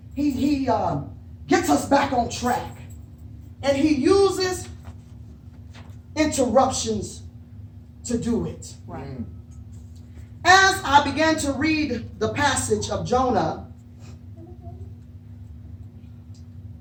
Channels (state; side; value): identical; both; correlation 1.00